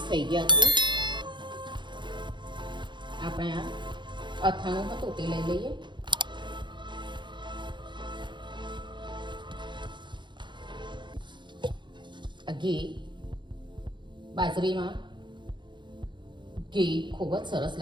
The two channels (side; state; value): left; late; 0.23 ms